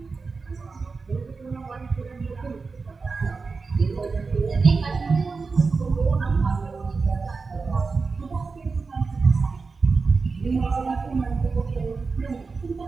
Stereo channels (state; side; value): quieter; left; 4.4 dB